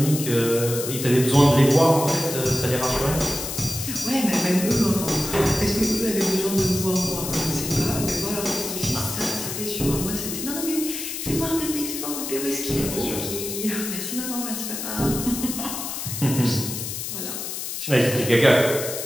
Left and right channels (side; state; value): left; noise; hiss, 5 dB below the sound